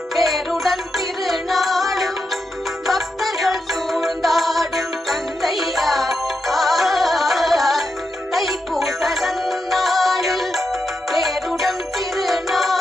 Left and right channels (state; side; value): normal; both; correlation 0.86